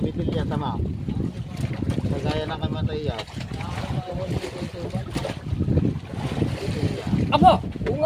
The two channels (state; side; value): identical; both; correlation 1.00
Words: tama. Kagaya na kamatay yan. Aba! Oo